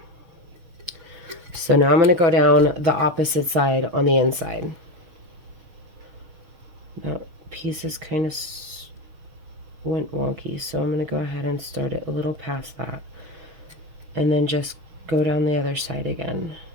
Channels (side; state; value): left; late; 6.4 ms